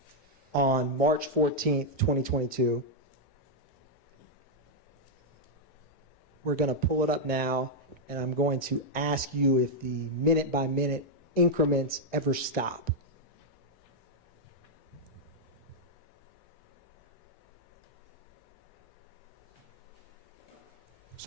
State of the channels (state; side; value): normal; both; correlation -0.02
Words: on March 14th, 2022, we're going to pull it up now, and I'm going to ask you if the minute-by-minute increments ever stop.